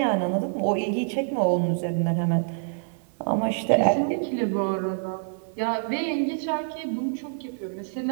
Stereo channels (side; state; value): left; silent; 61 dB below the other